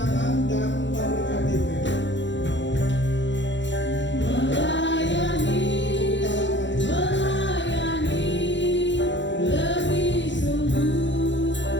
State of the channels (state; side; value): late; right; 0.53 ms